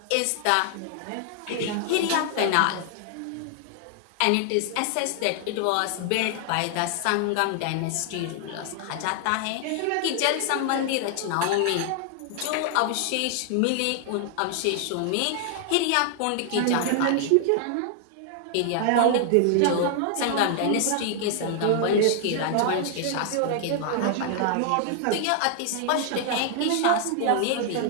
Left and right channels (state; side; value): different; both; correlation 0.00